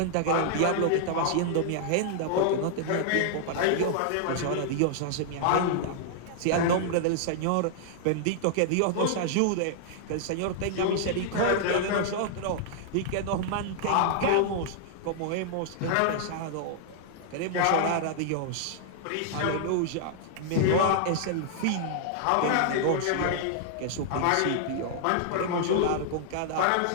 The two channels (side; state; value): both; different; correlation -0.01